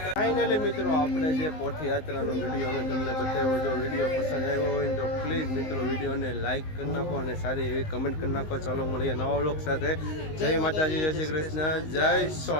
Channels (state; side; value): late; right; 19 ms